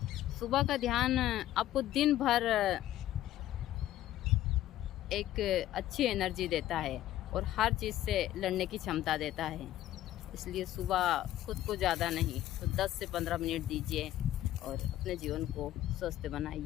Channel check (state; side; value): quieter; right; 13.5 dB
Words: सुबह का ध्यान आपको दिन भर एक अच्छी एनर्जी देता है और हर चीज़ से लड़ने की क्षमता देता है। इसलिए सुबह खुद को ज़्यादा नहीं तो 10 से 15 मिनट दीजिए और अपने जीवन को स्वस्थ